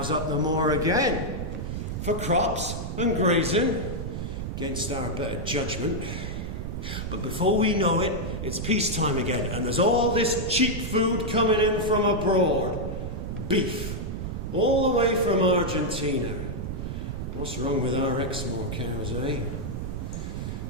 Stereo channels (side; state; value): right; noise; rumble, 4 dB below the sound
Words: up the moor again. For crops and grazing, against our better judgment. But before we know it, it's peacetime again, and there's all this cheap food coming in from abroad. Beef, all the way from Argentina. What's wrong with our Exmoor cows, eh?